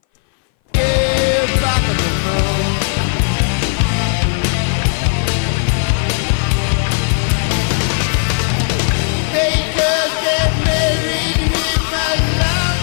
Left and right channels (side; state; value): right; silent; 60 dB below the other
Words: Hey, back at the moon. They just get married in my